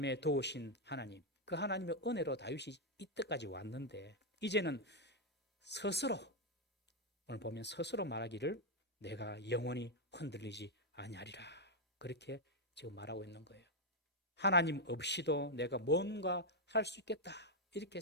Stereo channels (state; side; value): normal; both; correlation 0.00